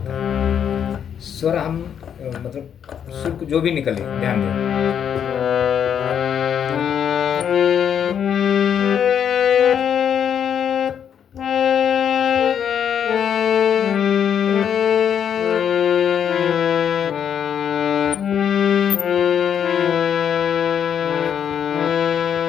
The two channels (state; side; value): quieter; right; 8.5 dB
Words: है। स्वर हम मतलब सुर जो भी निकले ध्यान दें।